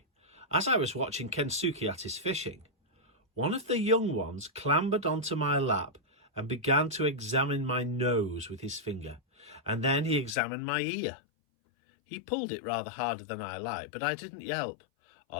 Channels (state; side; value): drops out; right; at 10.4 s